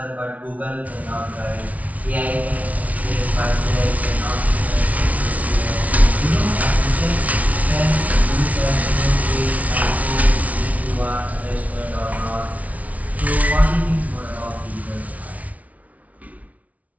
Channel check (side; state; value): left; late; 0.069 ms